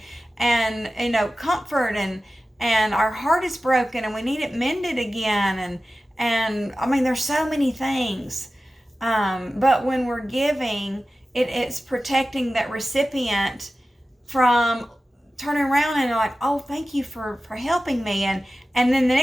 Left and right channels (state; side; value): normal; both; correlation 0.95